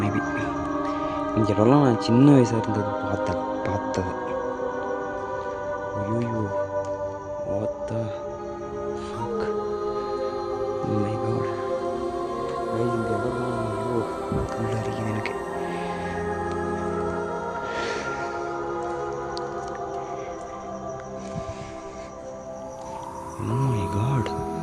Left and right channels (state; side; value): identical; both; correlation 1.00